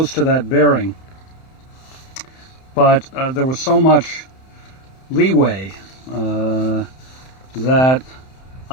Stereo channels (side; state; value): right; late; 31 ms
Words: to that bearing, but there was so much leeway that